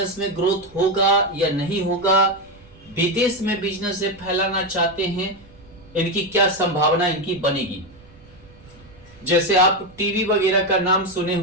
में ग्रोथ होगा या नहीं होगा, विदेश में बिजनेस से फैलाना चाहते हैं, इनकी क्या संभावना इनकी बनेगी। जैसे आप टीवी वगैरह का नाम सुने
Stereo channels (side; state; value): right; noise; rumble, 24 dB below the sound